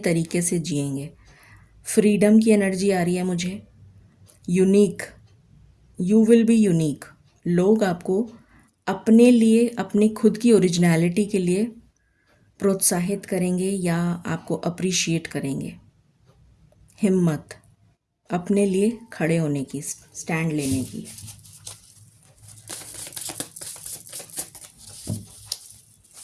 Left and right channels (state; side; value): identical; both; correlation 1.00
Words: से जिएंगे। फ्रीडम की एनर्जी आ रही है मुझे। Unique, you will be unique, लोग आपको अपने लिए, अपनी खुद की ओरिजिनलिटी के लिए प्रोत्साहित करेंगे या आपको अप्रिशिएट करेंगे। हिम्मत, अपने लिए खड़े होने की, स्टैंड लेने की।